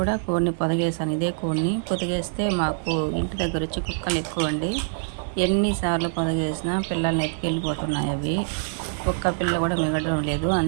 కూడా కోడిని పొదిగేసాను. ఇదే కోడిని పొదిగేస్తే మాకు ఇంటి దగ్గర వచ్చి కుక్కలు ఎక్కువ అండి. ఎన్నిసార్లు పొదిగేసినా పిల్లల్ని ఎత్తుకెళ్ళిపోతున్నాయి. అవి ఒక్క పిల్ల కూడా మిగలడం లేదు.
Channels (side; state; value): left; silent; digital silence